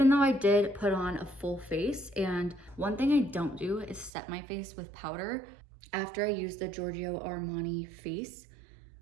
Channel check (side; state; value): left; drops out; at 4.1 s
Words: though I did put on a full face, and one thing I don't do is set my face with powder. After I use the Giorgio Armani face,